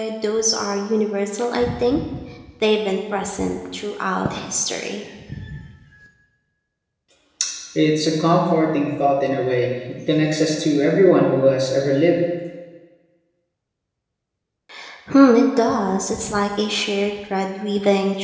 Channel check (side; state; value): both; identical; correlation 1.00